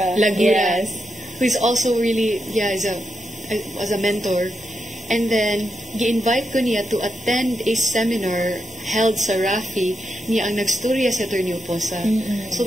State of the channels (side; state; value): both; normal; correlation 0.85